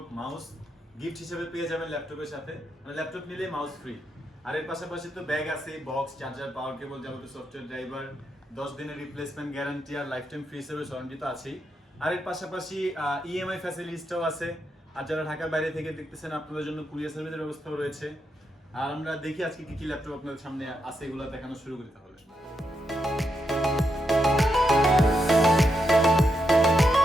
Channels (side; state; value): both; normal; correlation 0.83